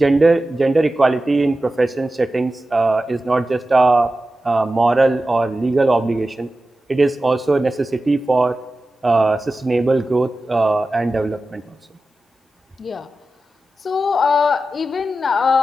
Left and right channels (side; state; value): both; normal; correlation 0.93